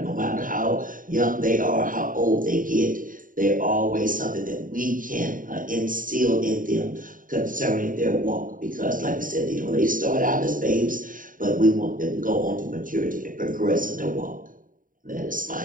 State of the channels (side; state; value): left; late; 0.39 ms